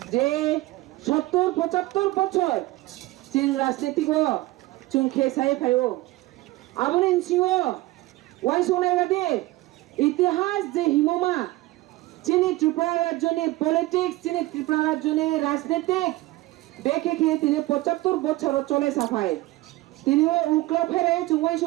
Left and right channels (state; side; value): quieter; left; 19.0 dB